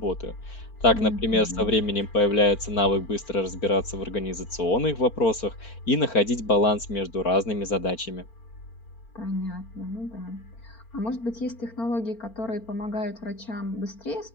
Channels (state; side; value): late; right; 4.4 ms